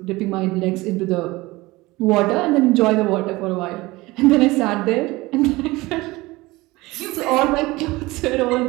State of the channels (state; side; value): quieter; left; 20.7 dB